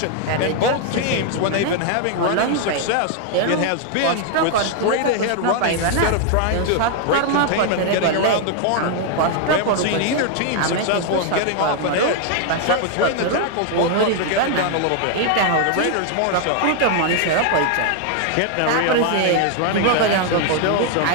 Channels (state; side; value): different; both; correlation 0.00